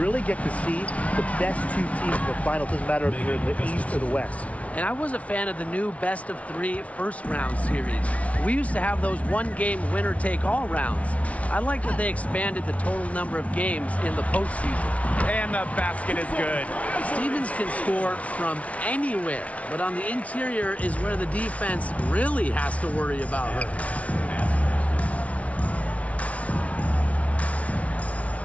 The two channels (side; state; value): right; late; 0.065 ms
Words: get to see the best two teams in the final. It doesn't matter if you're in the East or the West. And I was a fan of the new best-of-3 first-round series. We used to have those one-game winner-take-all rounds. I like that they expanded the total number of games in the postseason. And the basket is good. Stevens can score from anywhere, but on the interior is where the defense really has to worry about her.